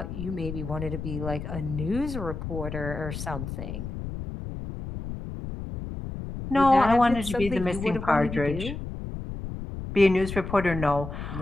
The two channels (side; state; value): left; noise; rumble, 7 dB below the sound